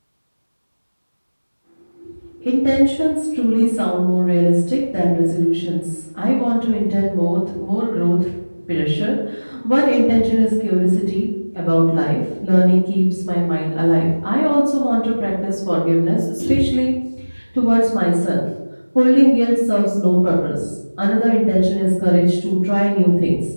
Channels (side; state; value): both; inverted; correlation -1.00